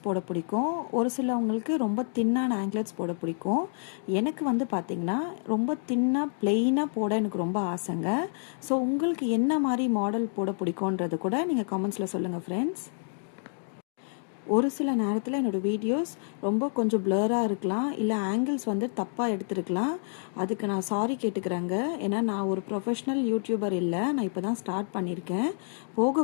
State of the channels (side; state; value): right; silent; digital silence